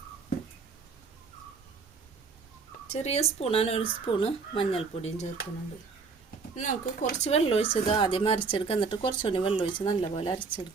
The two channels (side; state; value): left; quieter; 4.9 dB